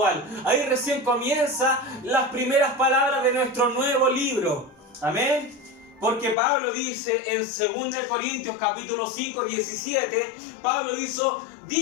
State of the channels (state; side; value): drops out; right; at 6.4 s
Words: Ahí recién comienza las primeras palabras de nuestro nuevo libro. Amén. Porque Pablo dice en 2 Corintios capítulo 5, 17,